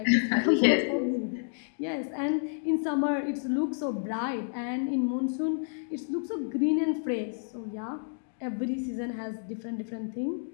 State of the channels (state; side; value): silent; right; digital silence